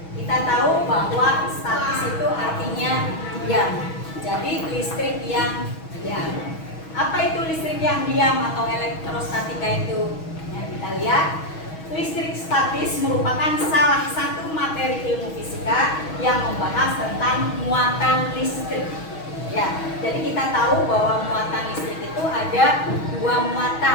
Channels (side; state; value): right; late; 6.2 ms